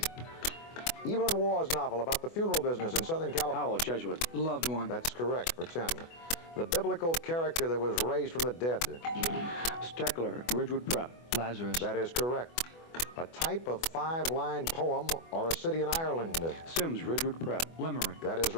Evelyn Waugh's novel about the funeral business in Southern California. Howell, Jesuit. The Loved One. That's correct for 10. The biblical character that was raised from the dead. Steckler, Ridgewood Prep. Lazarus. That is correct. A type of 5-line poem or a city in Ireland. Sims, Ridgewood Prep. Limerick. That is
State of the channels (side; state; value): right; late; 24 ms